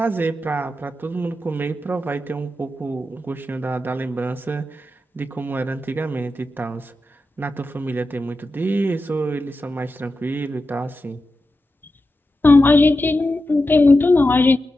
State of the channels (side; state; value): both; normal; correlation 0.90